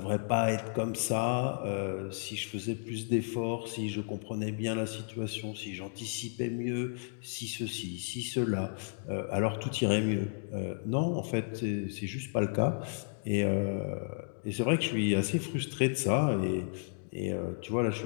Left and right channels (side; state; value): right; silent; digital silence